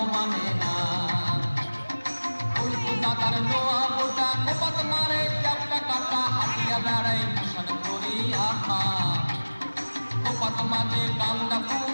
মানে না উল্টা তার নোয়া মোটা কোপাত মারে চ্যাপটা কাটা হাতিয়া বেড়াই ভূষণ করি আহা কোপাত মাঝে গান্দা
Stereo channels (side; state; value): both; inverted; correlation -1.00